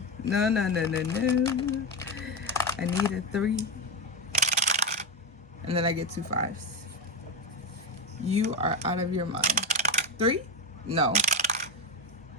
I need a 3. And then I get 2 5s. You are out of your mind. 3? No.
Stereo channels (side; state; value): both; normal; correlation 0.13